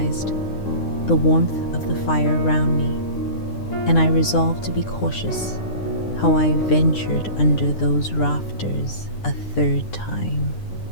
the warmth of the fire round me, and I resolved to be cautious how I ventured under those rafters a third time.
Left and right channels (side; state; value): right; late; 9.7 ms